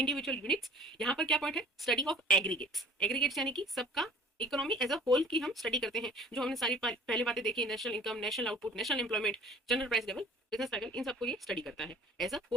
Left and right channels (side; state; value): both; normal; correlation 0.49